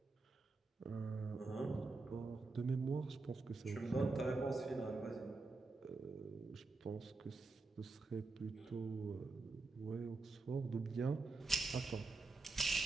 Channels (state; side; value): quieter; left; 3.7 dB